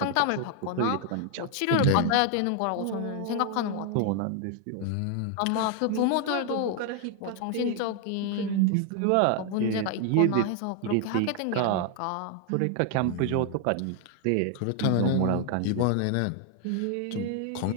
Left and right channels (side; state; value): both; different; correlation 0.00